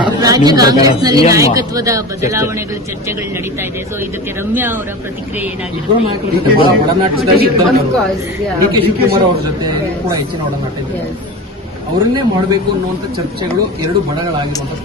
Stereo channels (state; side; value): normal; both; correlation 0.30